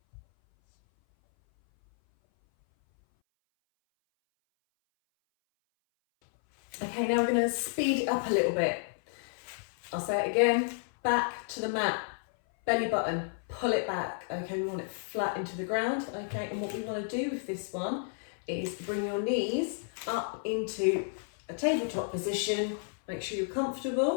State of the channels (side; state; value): right; silent; 57 dB below the other